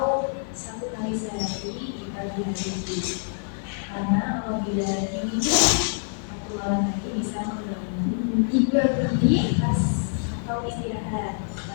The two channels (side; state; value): right; silent; 61 dB below the other